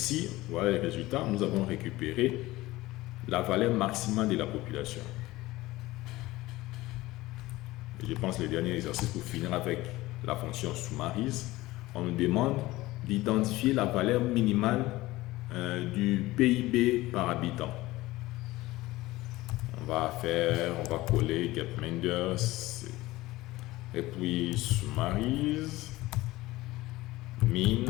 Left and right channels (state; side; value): quieter; right; 18.5 dB